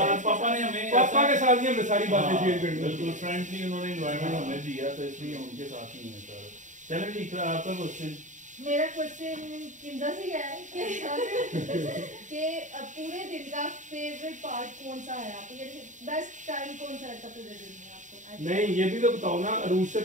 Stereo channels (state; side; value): late; left; 0.36 ms